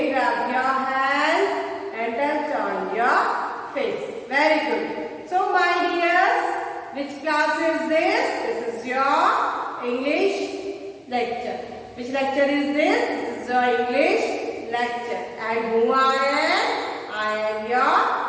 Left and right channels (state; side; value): identical; both; correlation 1.00